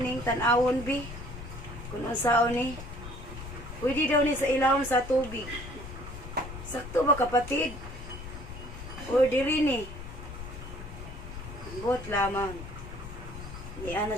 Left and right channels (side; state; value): left; noise; rumble, 11 dB below the sound